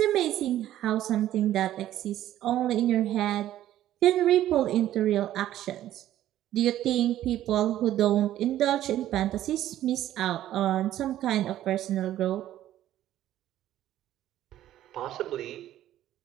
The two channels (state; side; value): quieter; left; 12.8 dB